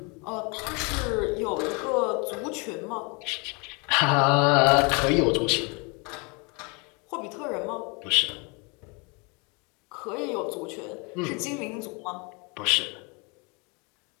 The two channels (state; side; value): quieter; right; 30.8 dB